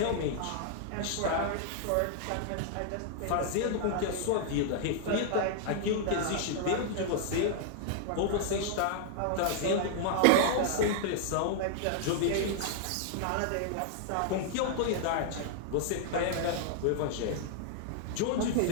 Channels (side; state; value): both; different; correlation -0.01